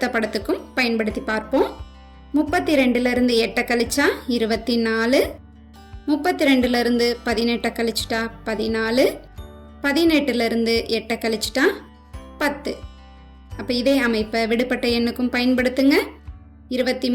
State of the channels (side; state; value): both; identical; correlation 1.00